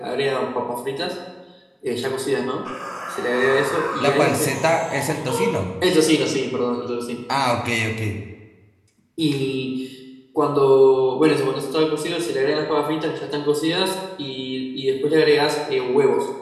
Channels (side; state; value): both; identical; correlation 1.00